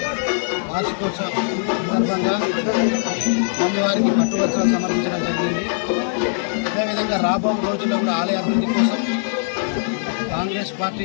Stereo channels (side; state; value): right; silent; 65 dB below the other